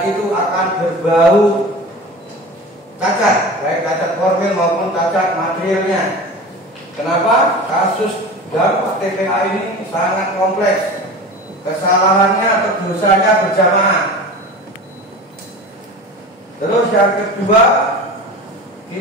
itu akan berbau cacat, baik cacat formil maupun cacat materialnya. Kenapa? Kasus dampak TPA ini sangat kompleks. Kesalahannya atau dosanya berjamaah. Terus yang kedua,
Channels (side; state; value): both; normal; correlation 0.34